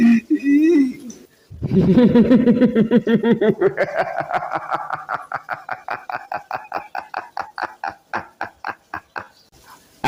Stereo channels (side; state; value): both; identical; correlation 1.00